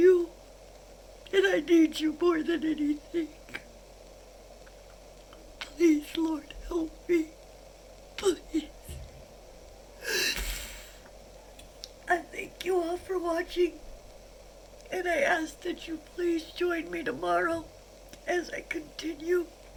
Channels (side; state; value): both; identical; correlation 1.00